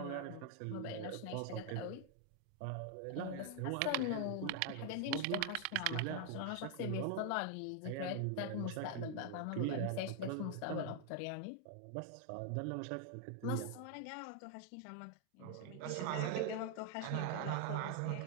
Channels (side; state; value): both; different; correlation 0.00